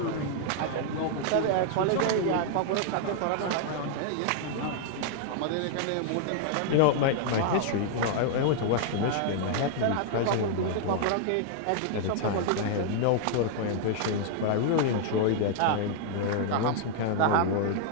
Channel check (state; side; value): different; both; correlation 0.00